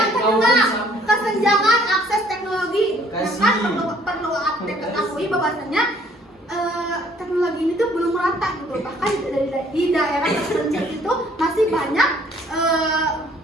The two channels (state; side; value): normal; both; correlation 0.60